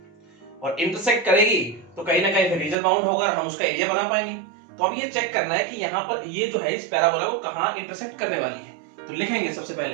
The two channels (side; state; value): left; drops out; at 2.8 s